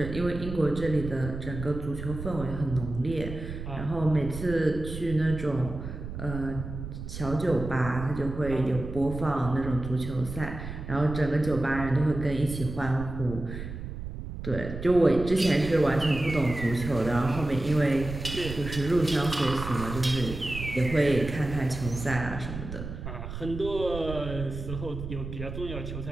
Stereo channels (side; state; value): right; noise; rumble, 8 dB below the sound